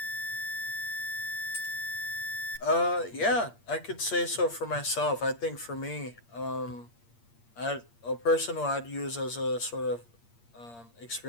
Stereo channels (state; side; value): late; right; 8.6 ms